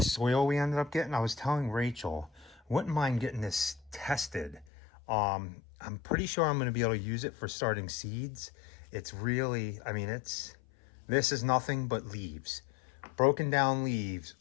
we ended up getting. I was telling Rachel, wouldn't mind getting this tested. I'm pretty sure I'm going to be able to use it for starting seeds. It's really, I mean, this is nothing but leaves, broken down leaves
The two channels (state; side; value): drops out; right; at 4.7 s